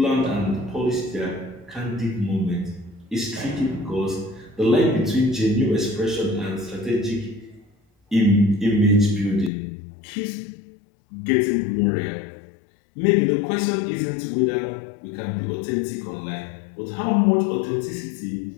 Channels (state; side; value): drops out; right; at 9.5 s